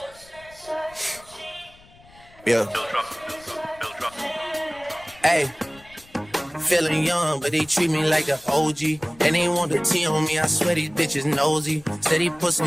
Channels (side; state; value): left; noise; rumble, 25 dB below the sound